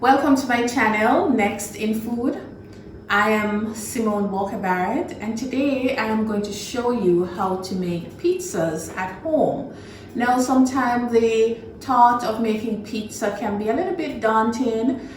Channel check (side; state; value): both; identical; correlation 1.00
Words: Welcome to my channel, Next in Food. I am Simone Walker Barrett, and today I am going to show you how to make pizzas at home. Now, sometimes the thought of making pizza can be a little bit daunting,